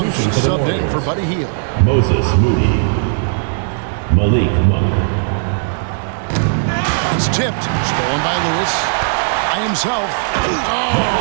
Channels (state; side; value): silent; left; digital silence